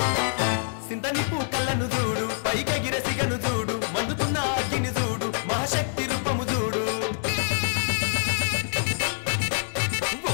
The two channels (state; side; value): silent; right; digital silence